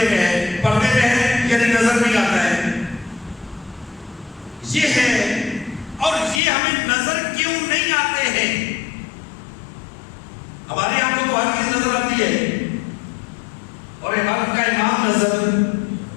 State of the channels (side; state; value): right; drops out; at 6.4 s